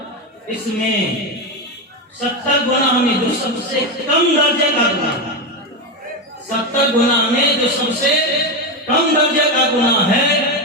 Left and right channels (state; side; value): normal; both; correlation 0.12